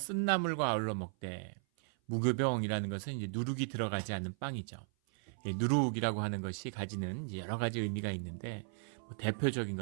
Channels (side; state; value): left; silent; 54 dB below the other